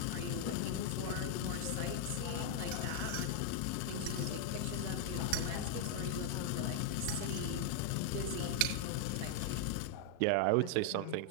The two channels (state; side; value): different; both; correlation -0.01